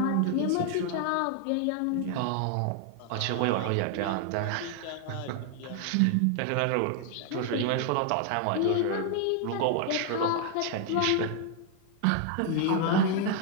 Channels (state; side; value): different; both; correlation 0.00